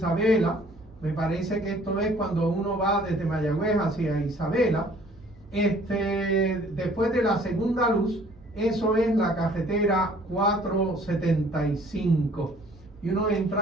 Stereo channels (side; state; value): right; noise; hum, 25 dB below the sound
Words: Me parece que esto es cuando uno va desde Mayagüez hacia Isabela. Después de la segunda luz, eso es la carretera 475. Y uno